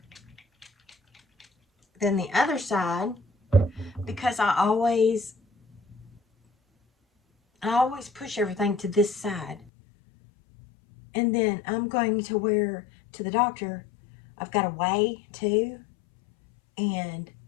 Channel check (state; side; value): drops out; right; at 9.7 s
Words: than the other side because I always push everything to this side. And then I'm going to wear to the doctor. I've got a weigh too, and